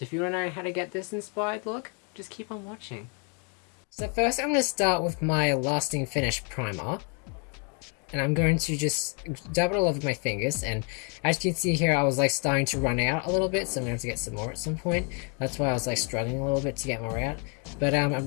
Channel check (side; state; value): right; quieter; 37.9 dB